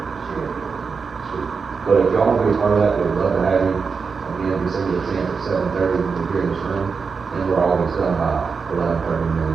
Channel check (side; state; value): left; quieter; 5.3 dB